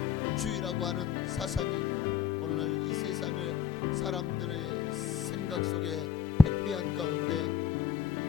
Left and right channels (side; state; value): right; quieter; 7.4 dB